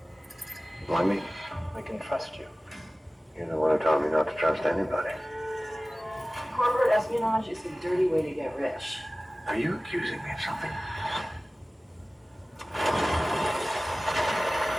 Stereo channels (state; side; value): normal; both; correlation 0.97